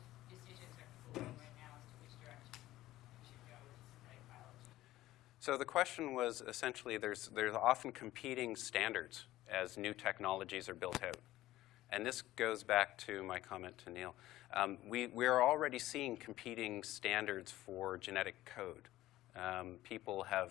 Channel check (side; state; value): right; quieter; 15.6 dB